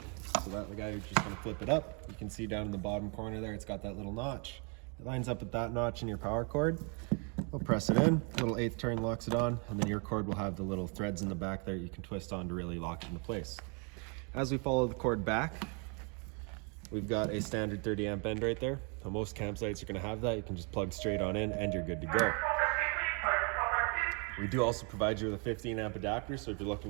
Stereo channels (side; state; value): left; quieter; 35.5 dB